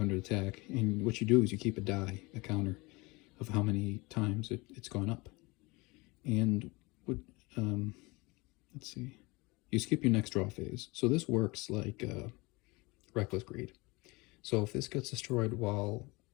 attack. And what you do is you keep a die, a counter, of how many times it's gone up. And what, let's see, you skip your next draw phase. So this works like Reckless Greed. So if this gets destroyed while,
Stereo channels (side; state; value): right; quieter; 24.7 dB